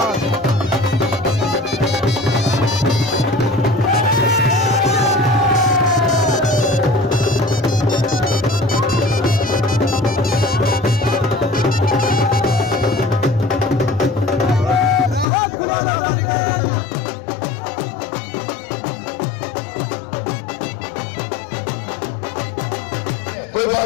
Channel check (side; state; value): right; drops out; at 15.2 s